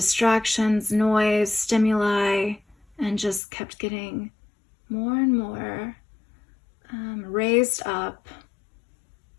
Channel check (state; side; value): drops out; right; at 3.4 s